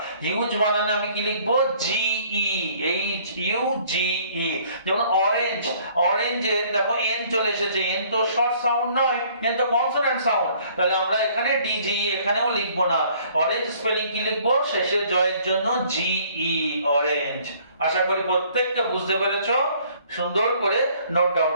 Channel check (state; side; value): inverted; both; correlation -0.59